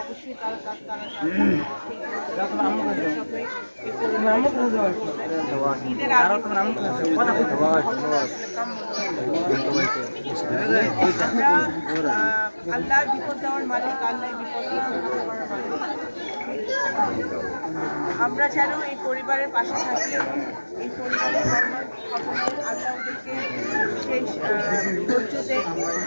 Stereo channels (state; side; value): inverted; both; correlation -1.00